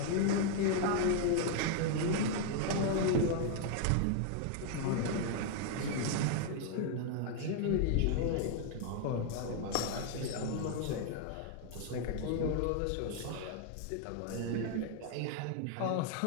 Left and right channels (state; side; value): different; both; correlation 0.00